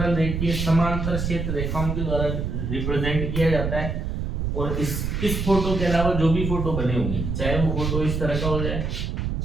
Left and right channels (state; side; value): noise; right; rumble, 2 dB below the sound